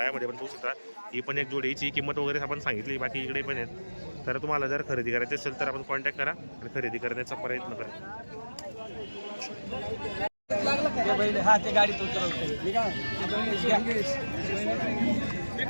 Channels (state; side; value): inverted; both; correlation -1.00